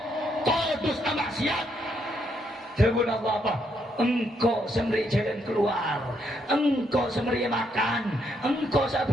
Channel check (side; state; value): both; normal; correlation 0.75